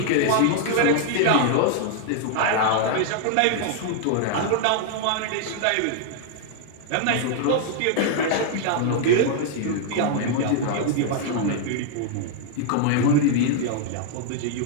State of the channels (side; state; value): both; different; correlation 0.00